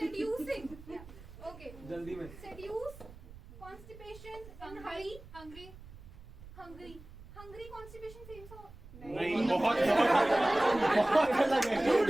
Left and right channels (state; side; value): noise; right; rumble, 18 dB below the sound